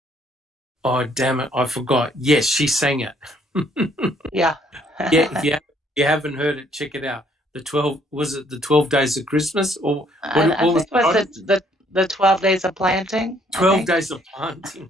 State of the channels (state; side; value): normal; both; correlation 0.65